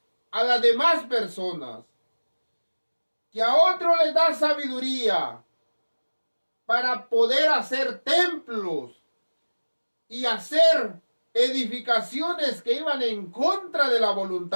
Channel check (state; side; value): inverted; both; correlation -1.00